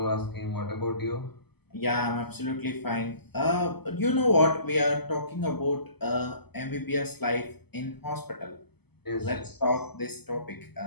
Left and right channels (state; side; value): late; right; 0.97 ms